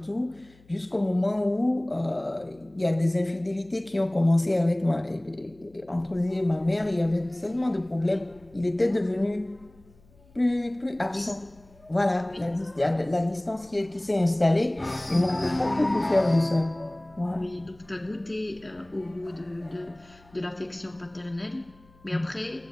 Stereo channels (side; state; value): left; noise; hum, 28 dB below the sound